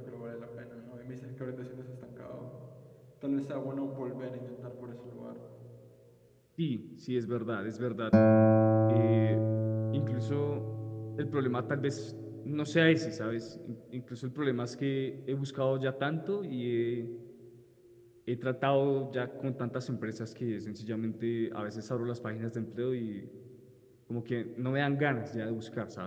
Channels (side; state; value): both; identical; correlation 1.00